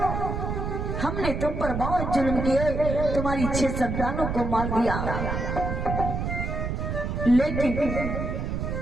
हमने तुम पर बहुत जुल्म किए, तुम्हारी 6 संतानों को मार दिया, लेकिन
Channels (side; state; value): right; noise; rumble, 2 dB below the sound